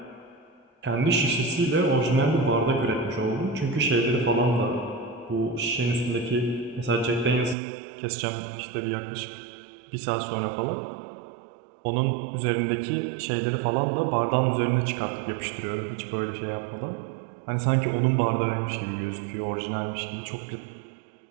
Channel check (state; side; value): drops out; left; at 7.6 s